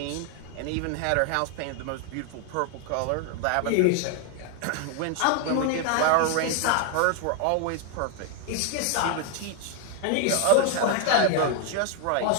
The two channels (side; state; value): both; different; correlation 0.00